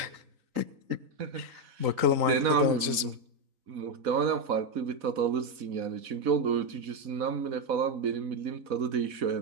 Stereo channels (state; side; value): late; left; 3.9 ms